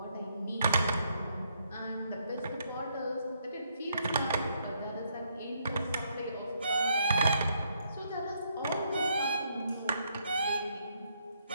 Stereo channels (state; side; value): inverted; both; correlation -0.73